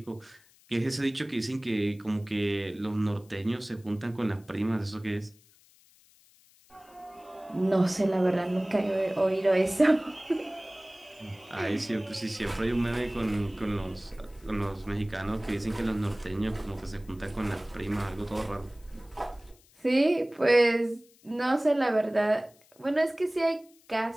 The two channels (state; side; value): noise; left; hiss, 29 dB below the sound